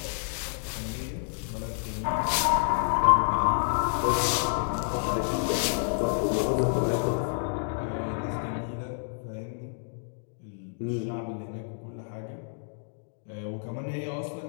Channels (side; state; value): right; silent; digital silence